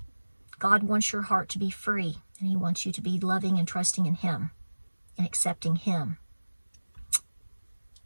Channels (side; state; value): both; inverted; correlation -1.00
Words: God wants your heart to be free, and he wants you to be loving and trusting in him and accepting him.